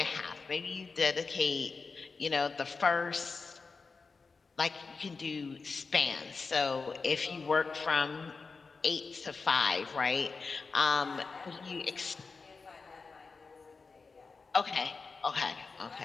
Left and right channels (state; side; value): quieter; right; 4.5 dB